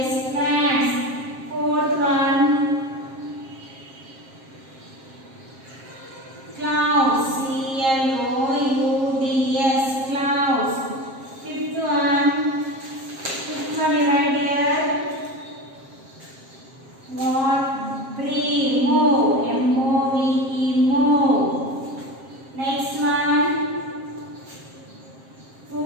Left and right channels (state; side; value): late; left; 7.5 ms